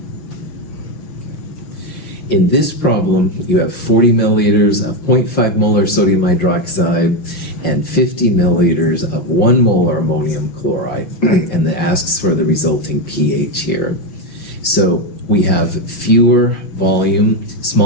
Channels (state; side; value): late; right; 5.7 ms